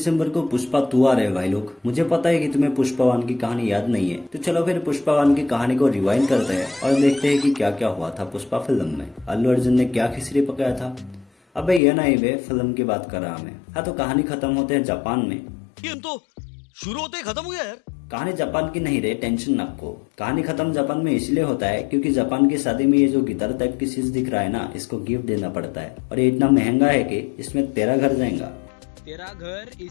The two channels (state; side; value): drops out; right; at 11.8 s